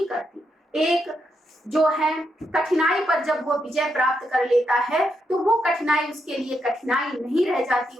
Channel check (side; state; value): both; normal; correlation 0.81